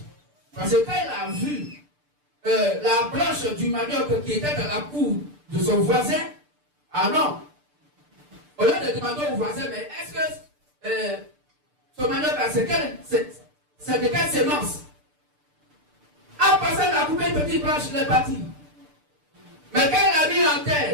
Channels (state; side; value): late; left; 6.8 ms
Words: Parce que quand il a vu la branche du manioc qui était dans la cour de son voisin, ah non. Au lieu de demander au voisin, mais est-ce que ce manioc, c'est de quelle sémence? En passant la couper une petite branche, il est parti. Mais quand il a mis en